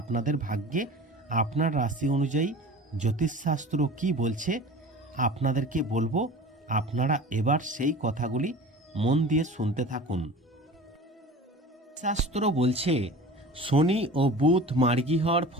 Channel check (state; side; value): normal; both; correlation 0.38